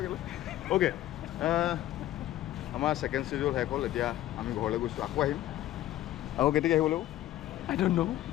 ওকে আমাৰ ছেকেণ্ড ছিডিউল শেষ হ'ল। এতিয়া আমি ঘৰলৈ গৈছোঁ, আকৌ আহিম। আকৌ কেতিয়াকৈ আহিব লাগিব? I don't know.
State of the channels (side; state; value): right; quieter; 14.0 dB